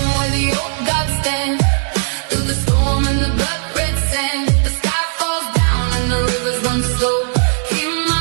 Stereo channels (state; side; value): silent; left; 68 dB below the other